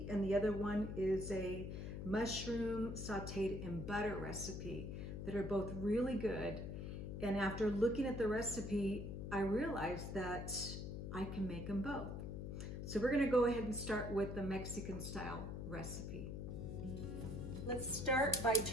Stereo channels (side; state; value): left; noise; hum, 5 dB below the sound